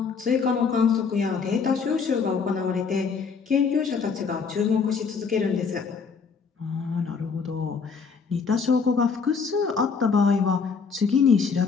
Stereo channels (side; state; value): right; quieter; 5.4 dB